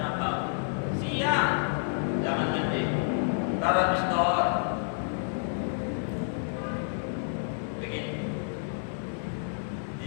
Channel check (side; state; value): right; silent; digital silence